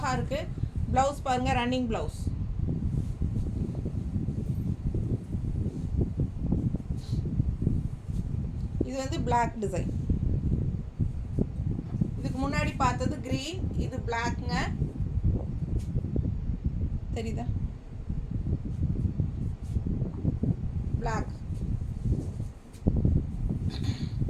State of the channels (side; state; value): both; identical; correlation 1.00